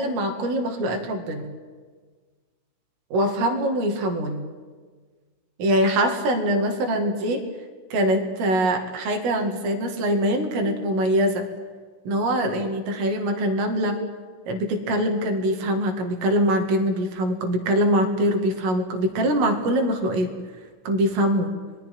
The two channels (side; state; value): left; late; 16 ms